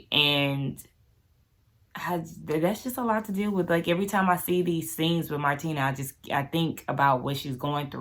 And that's just a lot to deal with. Like, every time I see these scenes with Martina, I think about what she's going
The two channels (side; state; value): both; identical; correlation 1.00